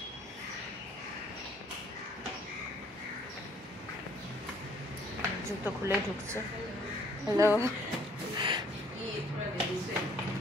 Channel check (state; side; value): normal; both; correlation 0.62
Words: জুতো খুলে ঢুকছে। হ্যালো,